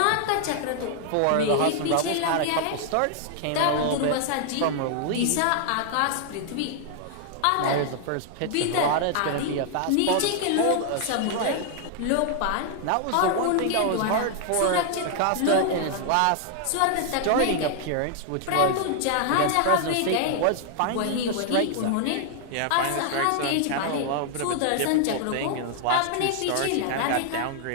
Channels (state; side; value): different; both; correlation 0.00